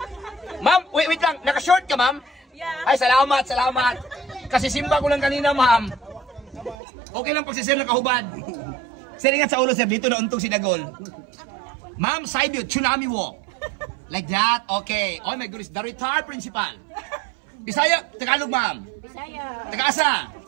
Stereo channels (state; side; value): drops out; left; at 6.8 s